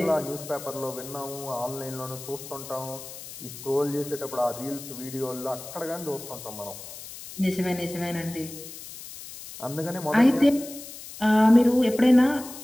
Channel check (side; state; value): left; noise; hiss, 13 dB below the sound